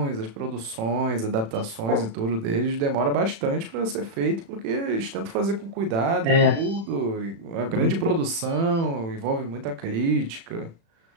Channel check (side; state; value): left; late; 36 ms